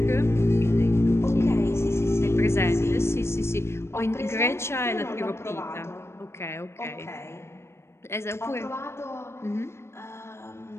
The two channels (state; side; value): late; right; 0.13 ms